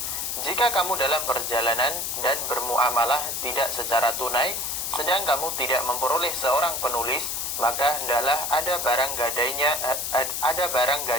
Jika kamu dalam perjalanan dan bermuamalah tidak secara tunai, sedang kamu tidak memperoleh seorang penulis, maka hendaklah ada barang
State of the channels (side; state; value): left; noise; hiss, 2 dB below the sound